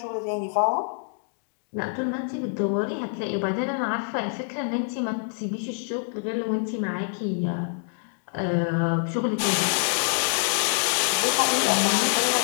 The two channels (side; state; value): right; silent; digital silence